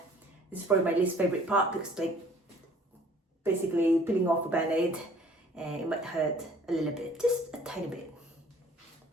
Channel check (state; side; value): normal; both; correlation 0.54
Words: is probably my least favorite part because like basically peeling off a band-aid, and it might hurt a little bit, just a tiny bit.